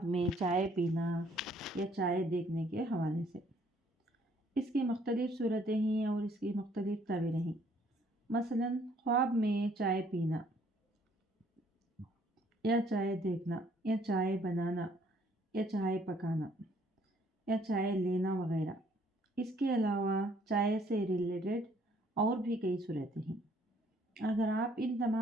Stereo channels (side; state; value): both; normal; correlation 0.63